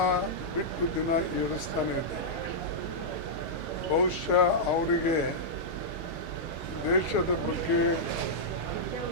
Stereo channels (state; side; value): normal; both; correlation -0.10